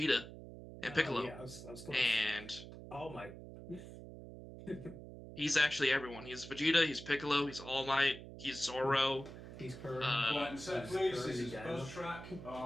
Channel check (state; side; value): noise; right; hum, 13 dB below the sound